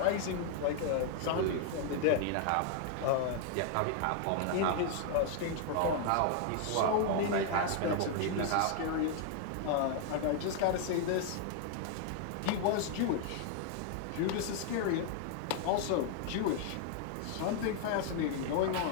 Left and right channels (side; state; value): both; different; correlation 0.00